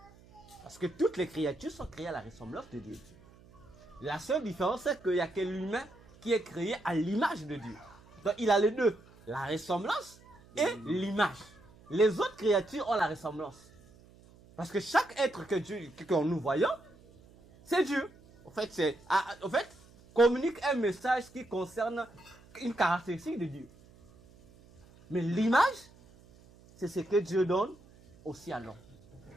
Parce que toutes les créatures sont créées à la ressemblance de Dieu. La seule différence, c'est qu'il n'y a que l'humain qui est créé à l'image de Dieu. Donc il a les deux, la ressemblance et l'image. Les autres créatures ont la ressemblance. Parce que chaque être que nous voyons, c'est Dieu. En fait, communique un message qui concerne une caractéristique de Dieu. Mais l'image, c'est ce que Dieu donne aussi à l'homme.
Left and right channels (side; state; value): right; noise; hum, 25 dB below the sound